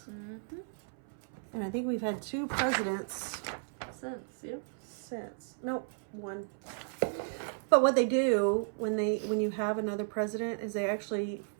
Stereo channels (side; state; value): left; silent; 55 dB below the other